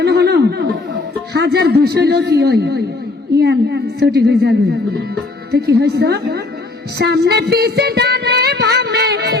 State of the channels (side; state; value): right; quieter; 3.3 dB